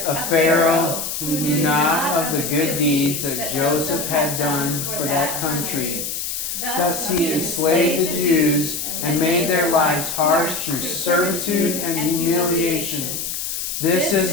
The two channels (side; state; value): left; noise; hiss, 4 dB below the sound